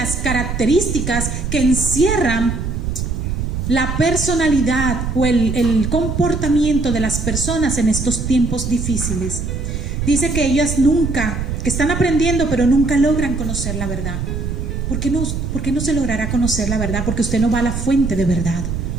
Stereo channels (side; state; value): right; noise; rumble, 3 dB below the sound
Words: características que encierran la personalidad o el comportamiento de las personas en estos tiempos difíciles. Dice que ellas que están aprendiendo, pero nunca logran conocer la verdad. ¿Por qué no se logrará conocer la verdad? Porque usted no va a la fuente de verdad.